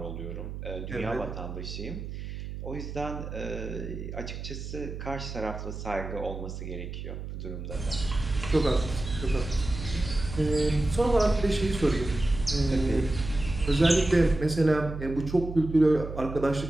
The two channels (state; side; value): noise; right; hum, 8 dB below the sound